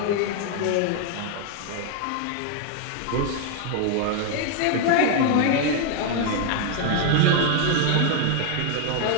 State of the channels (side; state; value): both; different; correlation 0.00